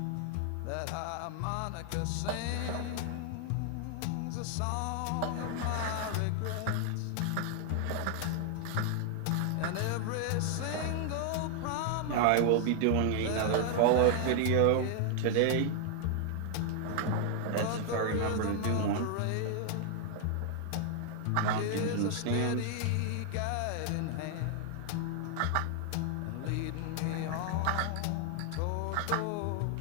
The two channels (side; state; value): both; different; correlation 0.00